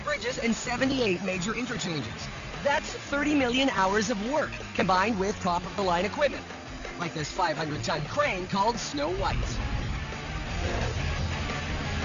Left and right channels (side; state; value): both; identical; correlation 1.00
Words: bridges, and 78 major interchanges. That's 30 million hours of work, combined with top-of-the-line equipment, like this 500-ton crane called Snow White.